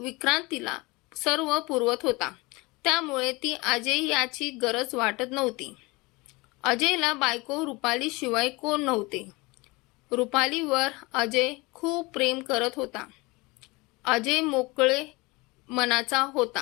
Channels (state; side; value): quieter; right; 24.3 dB